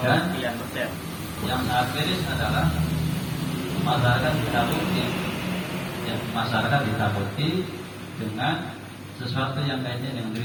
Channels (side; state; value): both; identical; correlation 1.00